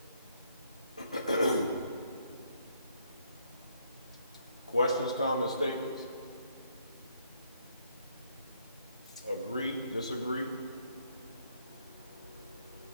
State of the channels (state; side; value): inverted; both; correlation -0.69